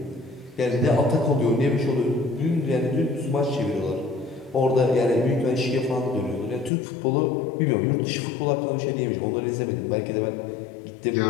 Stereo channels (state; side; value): drops out; right; at 6.7 s